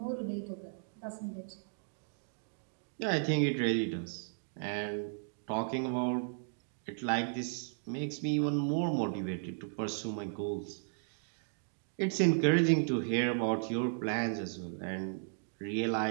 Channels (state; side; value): silent; left; digital silence